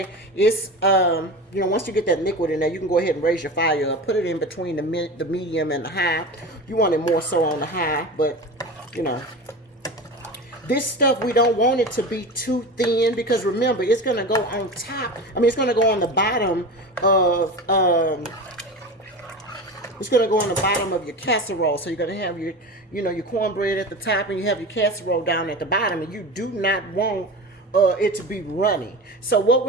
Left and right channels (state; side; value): normal; both; correlation 0.29